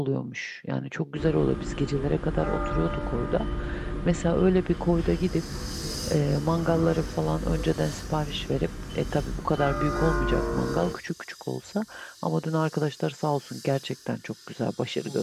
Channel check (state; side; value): identical; both; correlation 1.00